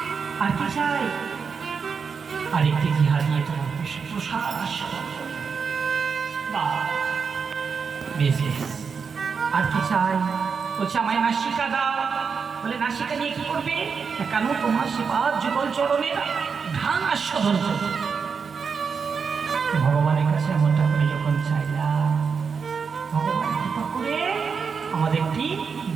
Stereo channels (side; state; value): left; quieter; 5.8 dB